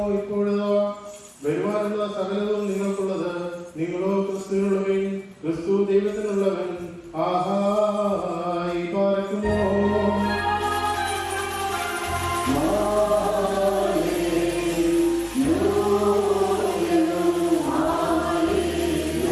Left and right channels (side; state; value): both; identical; correlation 1.00